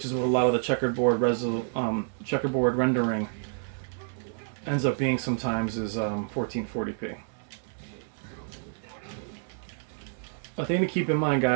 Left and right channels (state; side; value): silent; left; digital silence